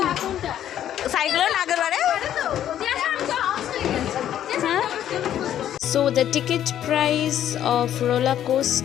সাইকেলের আগের বারে। So the ticket price of roller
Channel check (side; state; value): right; quieter; 11.0 dB